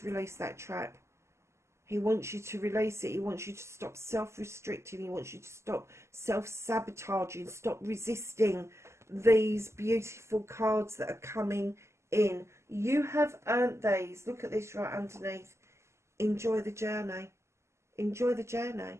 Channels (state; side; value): late; left; 0.13 ms